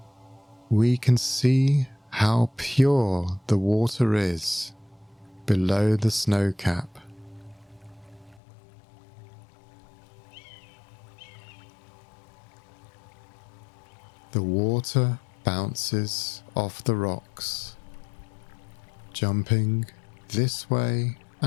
We can see how pure the water is below the snow cap. The water bounces off the rocks, jumping this way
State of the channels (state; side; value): drops out; right; at 8.4 s